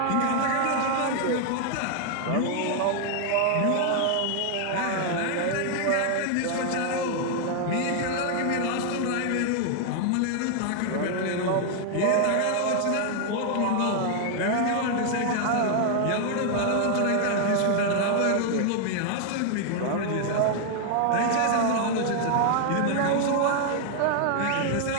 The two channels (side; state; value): both; different; correlation 0.00